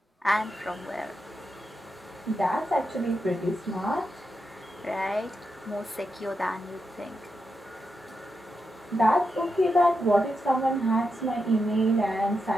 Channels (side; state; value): both; normal; correlation 0.86